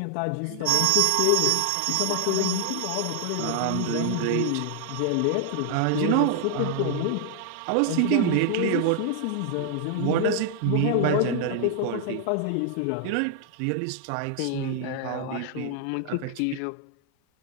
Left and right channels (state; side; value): different; both; correlation 0.00